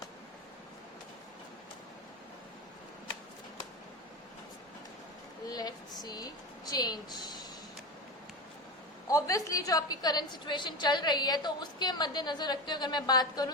Let's see change. Obviously जो आपकी करंट सिचुएशन चल रही है, तो उसके मद्देनजर रखते हुए अगर मैं बात करूं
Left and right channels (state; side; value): normal; both; correlation 0.23